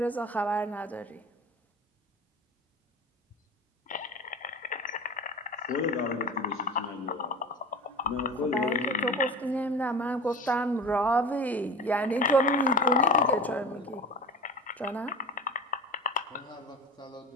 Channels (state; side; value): normal; both; correlation 0.34